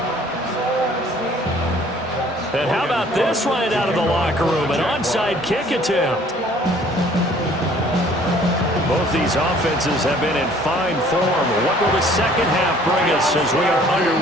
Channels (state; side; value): normal; both; correlation 0.56